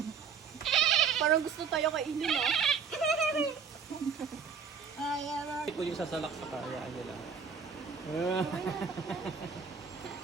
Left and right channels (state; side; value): quieter; left; 6.3 dB